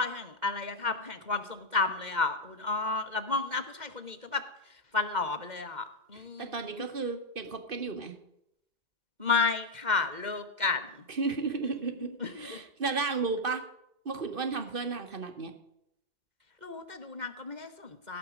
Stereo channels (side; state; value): left; late; 2.6 ms